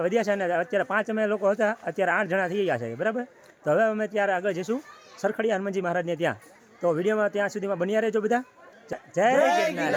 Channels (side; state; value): both; identical; correlation 1.00